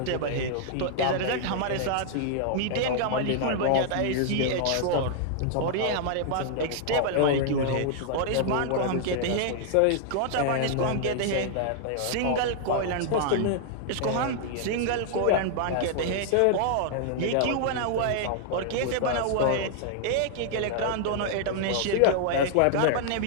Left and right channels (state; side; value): different; both; correlation -0.01